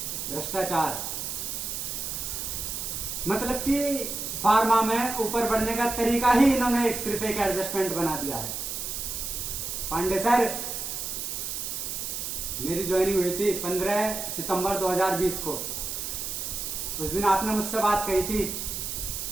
भ्रष्टाचार, मतलब कि फार्मा में ऊपर बढ़ने का तरीका ही इन्होंने सिर्फ एक एडजस्टमेंट बना दिया है। पांडे सर, मेरी ज्वाइनिंग हुई थी 15 सितंबर 2020 को। उस दिन आपने मुझसे बात कही थी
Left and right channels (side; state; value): right; noise; hiss, 4 dB below the sound